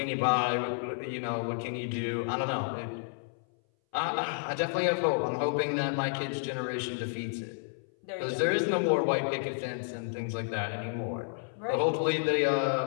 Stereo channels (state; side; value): silent; right; 57 dB below the other